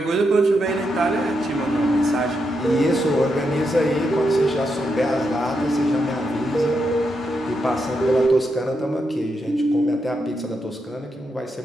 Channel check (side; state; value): both; normal; correlation 0.83